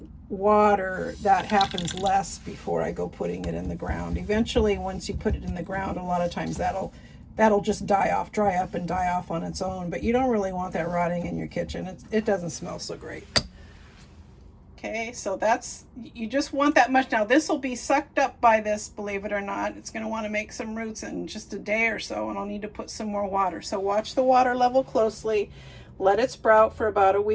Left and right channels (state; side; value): identical; both; correlation 1.00